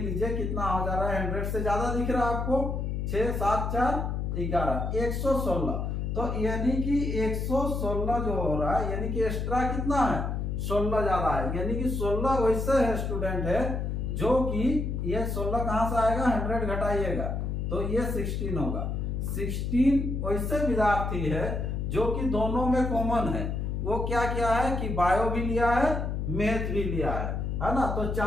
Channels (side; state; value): left; noise; hum, 2 dB below the sound